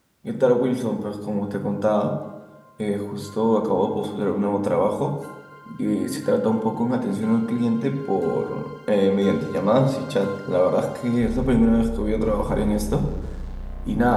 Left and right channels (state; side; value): identical; both; correlation 1.00